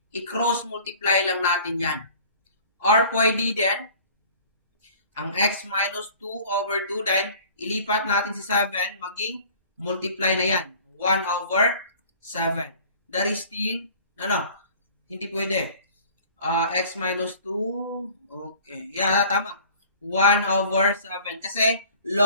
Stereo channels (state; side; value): inverted; both; correlation -0.48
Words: i-cross multiply lang natin yan. Or pwede din, ang x minus 2 over 2, then ilipat natin si 7, maging multiply na yan. 1 over 7. That is still, hindi pwede. X minus 2, okay. Yeah, tama. 1 over 7. Kasi